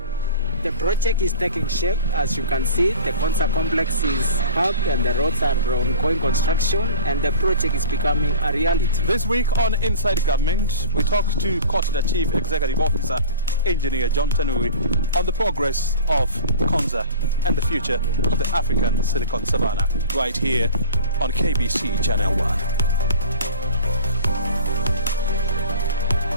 The project is taking shape. As you can see, the Konza complex is up and the roads are ongoing construction, and the project is becoming a reality. This week on Inside Government, we talked to Kotida Chief Executive Officer Engineer John Tanui on the progress of Konza and the future of the African Silicon Savannah, right here on KBC Channel 1.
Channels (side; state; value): both; inverted; correlation -0.39